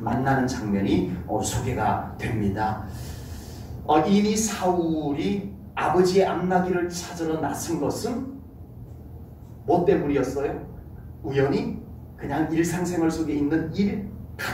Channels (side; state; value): both; identical; correlation 1.00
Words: 장면이 소개가 됩니다. 이미 사울이 아버지의 암나기를 찾으러 나선 것은 뭐 때문이었어요? 우연히 그냥 일상생활 속에 있는 일